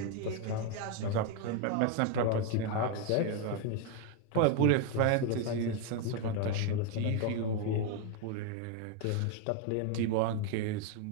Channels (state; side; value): different; both; correlation 0.01